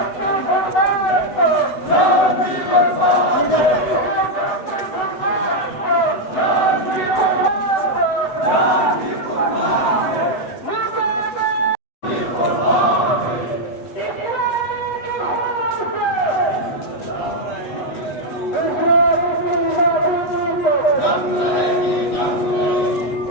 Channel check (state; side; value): late; right; 8.0 ms